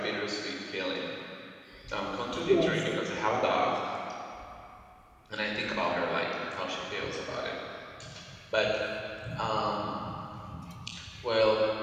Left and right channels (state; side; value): identical; both; correlation 1.00